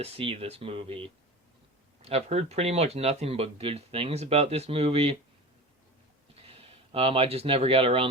see this movie. I've heard pretty much nothing but good things about this movie. I just never got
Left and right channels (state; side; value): normal; both; correlation 0.32